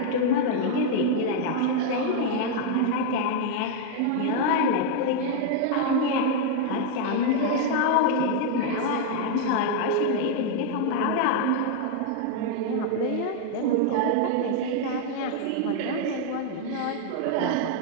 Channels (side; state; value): both; different; correlation 0.00